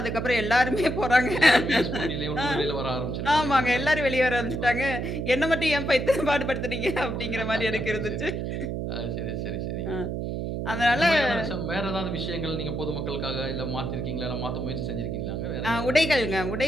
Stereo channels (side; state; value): right; noise; hum, 3 dB below the sound